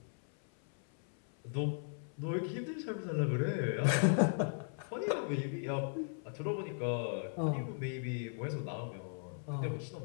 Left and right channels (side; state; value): right; silent; 53 dB below the other